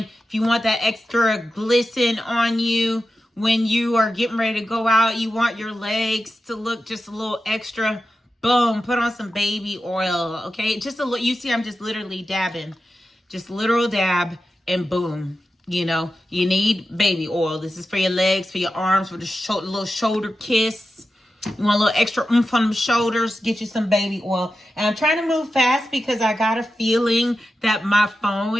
if you want that extra glisten on you when you are getting ready to go out, you want your legs to look just a little extra, boom, put on some baby oil, okay? Just a little, you see I'm just literally dabbing. Just literal dab and boom. You know, you need baby oil. This is for your legs, for your arms, for the little shoulder kiss. You want a little extra oomph on the shoulders, get you some baby oil. And I'm trying to move fast because I got a feeling that my phone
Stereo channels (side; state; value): both; normal; correlation 0.92